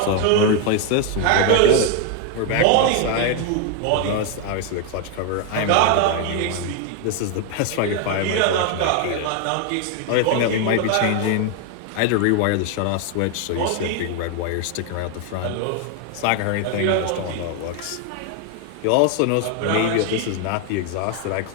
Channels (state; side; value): different; both; correlation 0.01